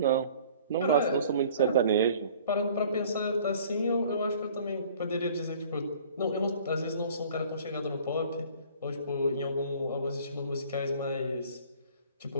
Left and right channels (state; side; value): inverted; both; correlation -0.51